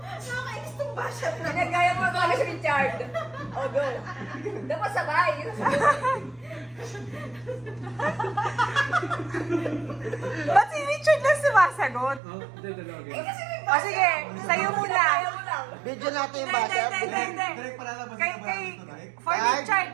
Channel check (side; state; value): left; drops out; at 12.2 s